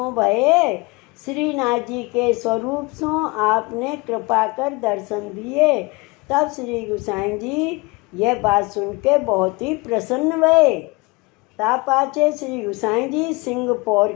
भये। श्रीनाथ जी के स्वरूप सो आपने कृपा कर दर्शन दिए। तब श्री गोसाई जी यह बात सुन के बहुत ही प्रसन्न भये। ता पाछे श्री गोसाई जी सिंहपौर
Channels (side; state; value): right; quieter; 25.4 dB